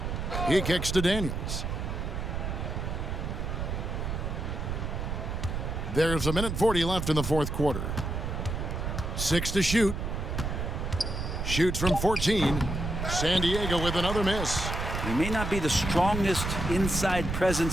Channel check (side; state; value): right; noise; rumble, 3 dB below the sound